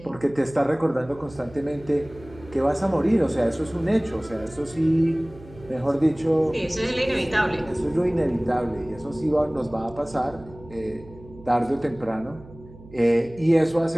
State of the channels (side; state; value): right; noise; hum, 20 dB below the sound